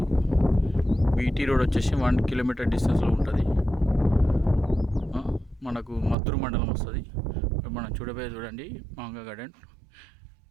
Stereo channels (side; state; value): left; drops out; at 6.2 s